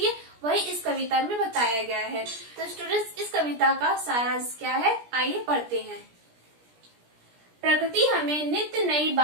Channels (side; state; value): left; late; 17 ms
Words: है वही इस कविता में बताया गया है। तो स्टूडेंट्स, इस कविता का सारांश क्या है, आइए पढ़ते हैं। प्रकृति हमें नित्य नई